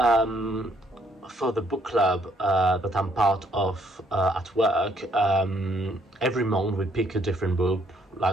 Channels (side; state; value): both; normal; correlation 0.68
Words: for the book club that I'm part of at work, every month we pick a different book,